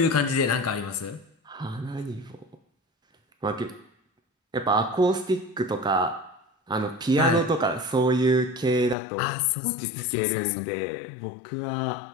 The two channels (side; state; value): right; drops out; at 9.0 s